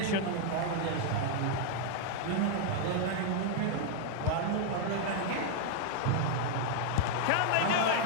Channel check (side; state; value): both; different; correlation 0.00